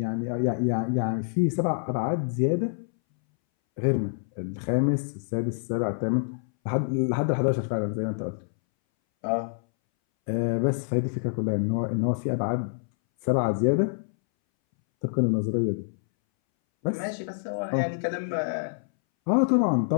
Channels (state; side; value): silent; right; 60 dB below the other